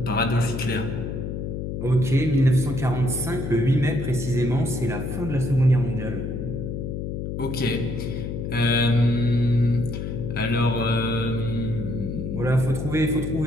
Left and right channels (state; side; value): noise; left; hum, 4 dB below the sound